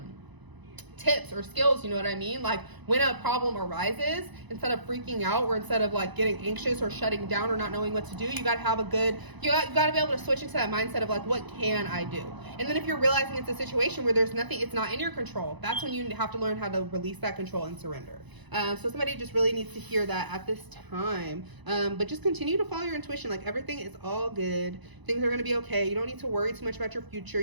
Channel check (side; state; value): left; late; 1.0 ms